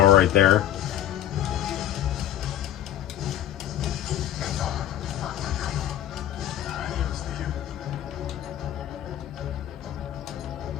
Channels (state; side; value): quieter; right; 11.6 dB